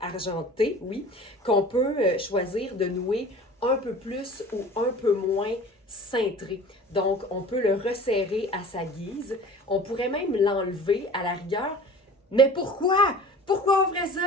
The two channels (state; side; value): normal; both; correlation 0.41